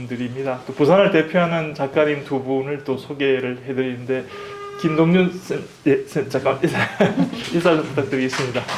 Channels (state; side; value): identical; both; correlation 1.00